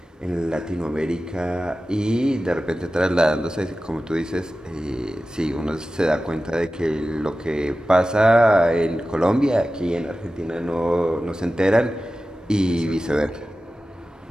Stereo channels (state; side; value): normal; both; correlation 0.94